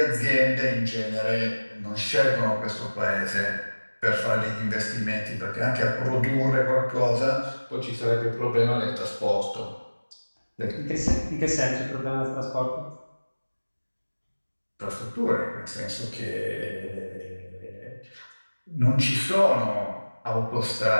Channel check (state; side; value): inverted; both; correlation -1.00